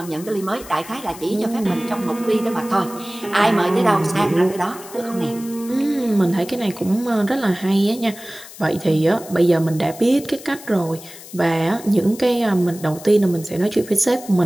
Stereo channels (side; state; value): left; noise; hiss, 17 dB below the sound